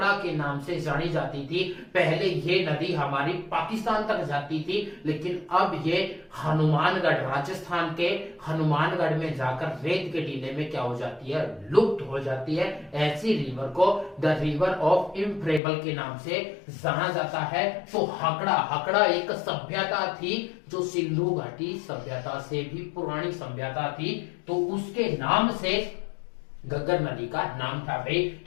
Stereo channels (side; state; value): right; drops out; at 15.6 s